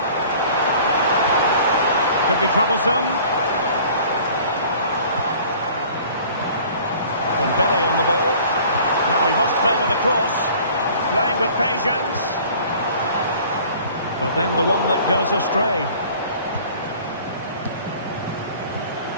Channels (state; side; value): inverted; both; correlation -0.49